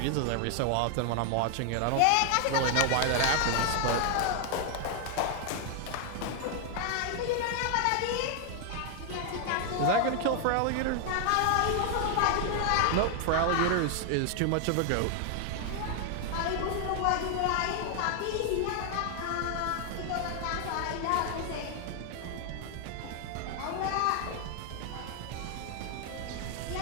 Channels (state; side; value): different; both; correlation 0.00